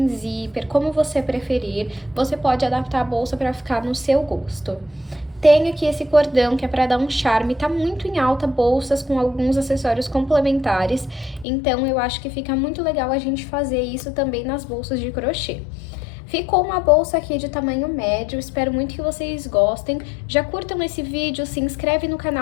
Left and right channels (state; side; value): drops out; right; at 11.5 s